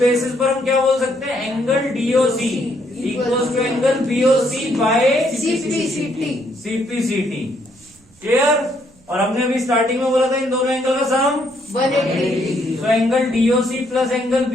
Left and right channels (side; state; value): right; noise; rumble, 30 dB below the sound